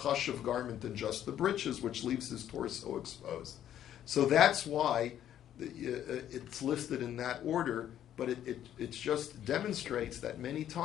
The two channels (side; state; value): right; quieter; 10.9 dB